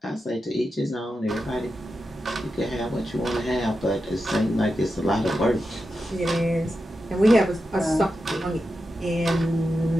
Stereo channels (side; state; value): both; normal; correlation 0.89